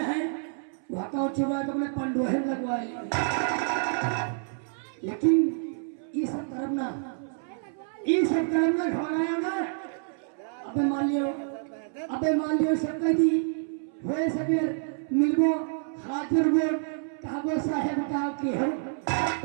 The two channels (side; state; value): left; silent; 59 dB below the other